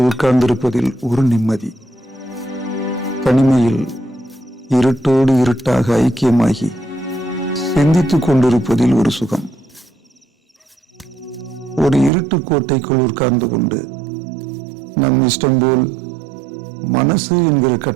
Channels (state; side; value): drops out; left; at 12.1 s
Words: உட்கார்ந்திருப்பதில் ஒரு நிம்மதி. தனிமையில் இருட்டோடு இருட்டாக ஐக்கியமாகி சிந்தித்துக் கொண்டிருப்பதில் ஒரு சுகம். ஒரு இருட்டு கோட்டைக்குள் உட்கார்ந்து கொண்டு நம் இஷ்டம் போல் மனசு என்கிற